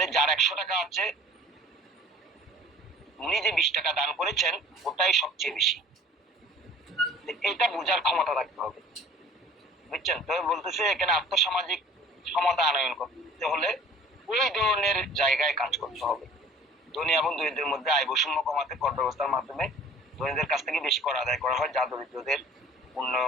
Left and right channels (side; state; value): both; normal; correlation 0.48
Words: যার 100 টাকা আছে, উনি যে 20 টাকা দান করেছেন ওটাই সবচেয়ে বেশি। এটা বোঝার ক্ষমতা রাখতে হবে, বুঝছেন? তবে বলতেছে এখানে আর্থসামাজিক ক্ষমতা আনয়ন করতে হলে ওই ধরনের জায়গায় কাজ করতে হবে। ধনী এবং দরিদ্রের মধ্যে আয় বৈষম্য কমাতে কর ব্যবস্থার মাধ্যমে ধনীদের কাছ থেকে বেশি কর আদায় করা হয়, যা দরিদ্রদের